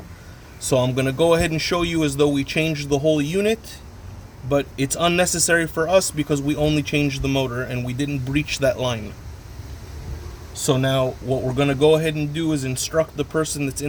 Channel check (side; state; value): both; identical; correlation 1.00